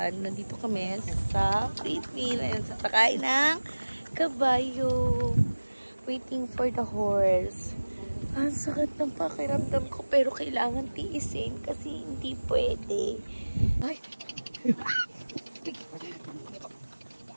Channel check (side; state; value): both; inverted; correlation -1.00